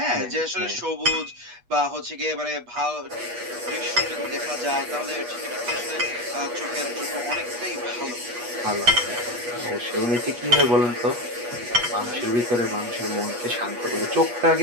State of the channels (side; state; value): left; late; 8.3 ms